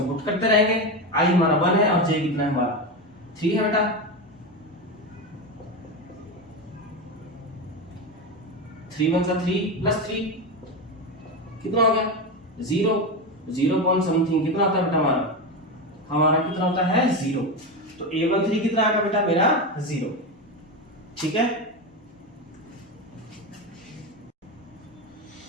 पुट करते रहेंगे। i हमारा 1 है और j कितना है हमारा 3 है बेटा। 3 1 3 +3 कितना हो गया 0, 0 पॉइंट समथिंग कितना होता है बेटा हमारा कितना होता है 0। तो A13 कितना आएगा बेटा मेरा 0। ठीक है,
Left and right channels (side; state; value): both; normal; correlation 0.16